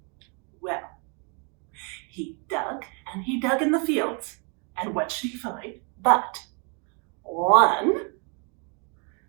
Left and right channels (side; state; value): left; quieter; 36.1 dB